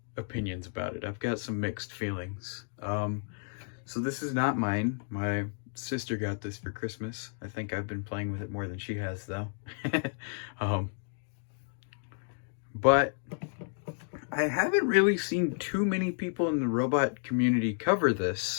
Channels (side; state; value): right; silent; 56 dB below the other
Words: opinions about it. I've got some mixed feelings. So this is not mine. My sister got this for Christmas. I think I've been playing with it more than she has, though. But I haven't really seen too many people in the robot community cover this,